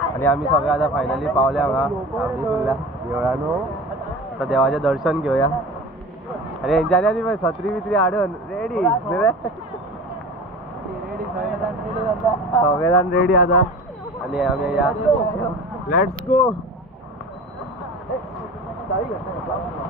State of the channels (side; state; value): both; normal; correlation 0.36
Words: आणि आम्ही सगळे आता फायनली पावले हांगा आमच्या देवळानो. आता देवाचे दर्शन घेऊया. अरे यांच्यानी आधी पण छत्री बित्री हाडून रेडी बरे. सगळेजण रेडी आता आणि आम्ही या लेट्स गो.